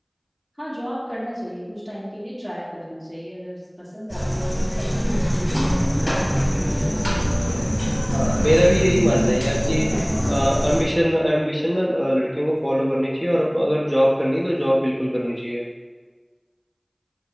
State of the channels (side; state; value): both; identical; correlation 1.00